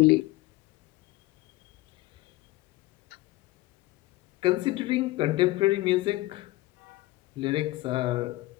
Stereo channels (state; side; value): quieter; right; 19.0 dB